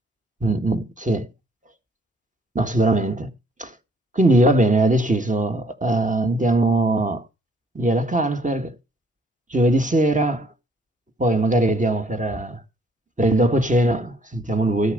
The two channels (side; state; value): both; normal; correlation 0.63